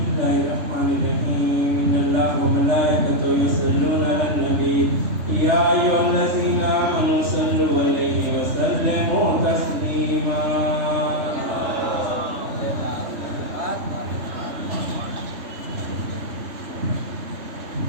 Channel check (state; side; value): late; left; 3.4 ms